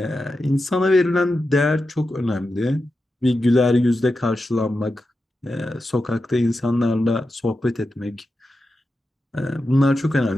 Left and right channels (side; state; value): both; normal; correlation 0.90